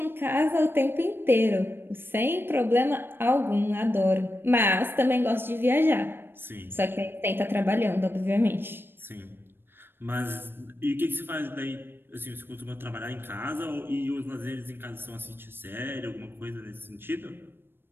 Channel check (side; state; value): left; late; 0.10 ms